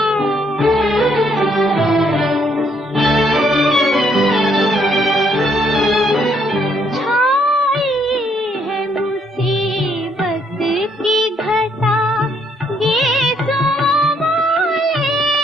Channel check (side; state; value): both; normal; correlation 0.70